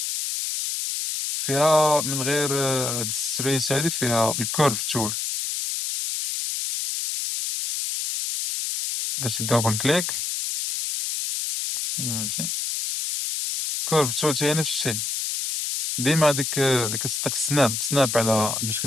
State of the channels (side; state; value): left; noise; hiss, 2 dB below the sound